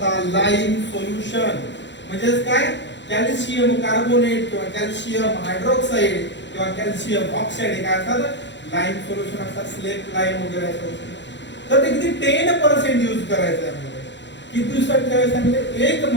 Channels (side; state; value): right; late; 0.52 ms